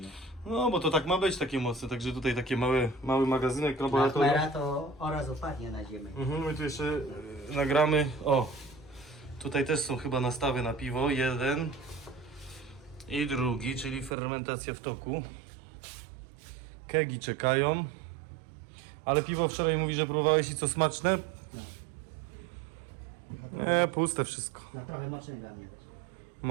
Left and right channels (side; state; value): left; drops out; at 14.1 s